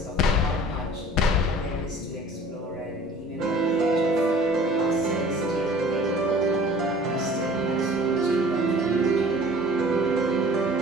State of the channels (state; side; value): normal; both; correlation 0.47